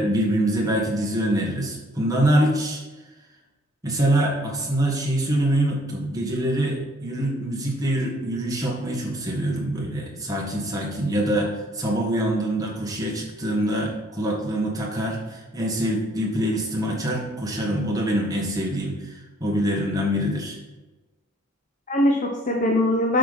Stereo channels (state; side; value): normal; both; correlation 0.62